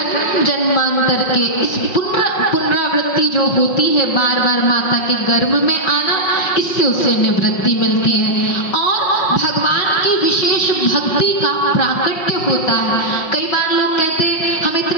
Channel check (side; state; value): right; late; 5.5 ms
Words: जन्मांतर के इस पुनरावृत्ति जो होती है, बार बार माता के गर्भ में आना, इससे उसे निवृत्ति मिलती है और भगवान की विशेष भक्ति का प्राकट्य होता है। कई बार लोग कहते हैं हम